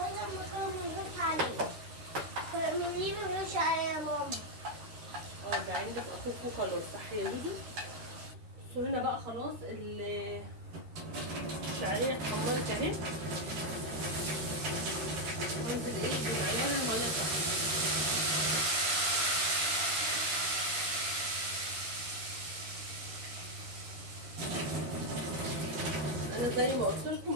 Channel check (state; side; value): late; left; 13 ms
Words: كانوا بنغش عليه كانوا ليه بنغش عليه يا ماما؟ ده عندك اخوكوا خلاص صح يا لودو. بصوا هنا بقى خلاص الشعريه اتحمرت اهي. هنزل ايه بمعيار الميه بتاعتي. انا زي ما قلت